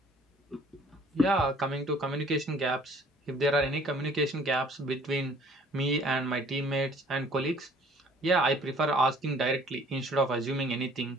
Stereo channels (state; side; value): normal; both; correlation 0.55